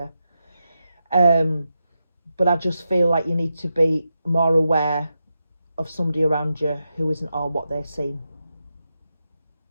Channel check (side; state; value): both; inverted; correlation -0.88